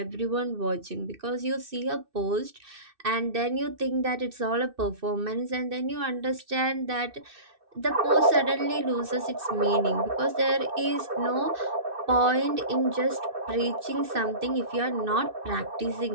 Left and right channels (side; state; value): left; late; 2.6 ms